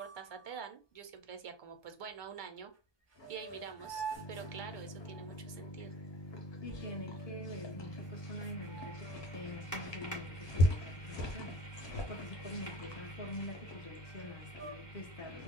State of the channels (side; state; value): right; late; 1.2 ms